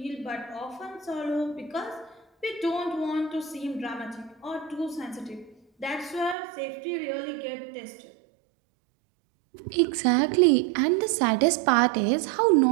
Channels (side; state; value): left; drops out; at 6.4 s